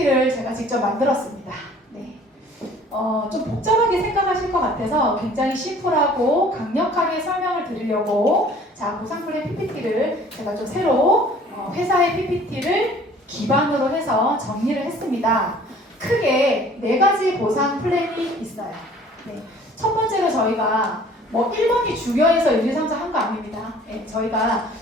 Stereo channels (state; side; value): normal; both; correlation 0.52